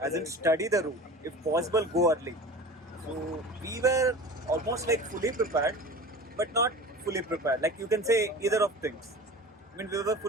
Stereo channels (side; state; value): both; normal; correlation 0.36